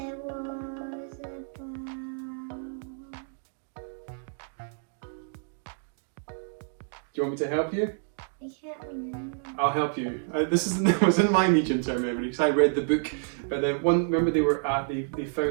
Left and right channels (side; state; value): left; silent; digital silence